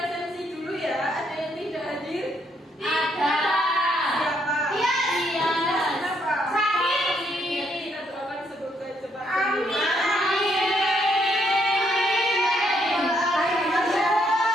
dulu ya. Ada yang tidak hadir? Ada. Siapa? Iya. Kenapa? Sakit. Kita doakan semoga cepat Amin.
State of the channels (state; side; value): normal; both; correlation 0.73